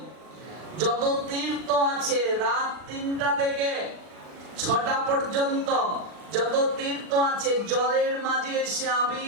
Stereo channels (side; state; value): left; late; 40 ms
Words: যত তীর্থ আছে রাত 3টা থেকে 6টা পর্যন্ত যত তীর্থ আছে জলের মাঝে এসে